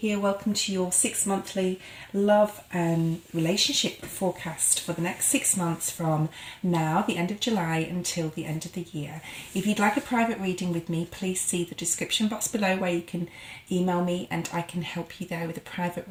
here. Welcome to your 6-monthly love and relationship forecast for the next 6 months from now, the end of July, until the end of the year. If you'd like a private reading with me, please see the description box below where you can email me and I can help you there with a private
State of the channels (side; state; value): both; identical; correlation 1.00